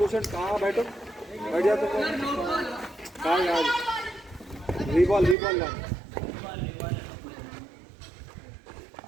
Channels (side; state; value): left; drops out; at 5.4 s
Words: कहाँ बैठो, बैठ जाओ तुम. कहाँ यार रीबॉल ला.